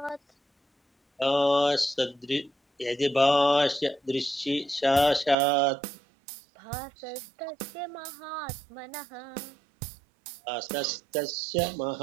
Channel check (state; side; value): drops out; left; at 5.4 s